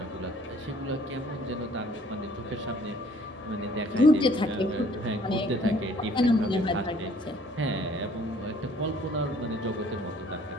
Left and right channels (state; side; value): normal; both; correlation 0.57